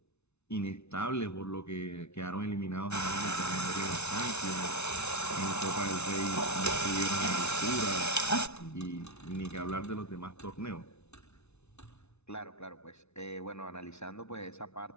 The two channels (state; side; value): late; right; 0.81 ms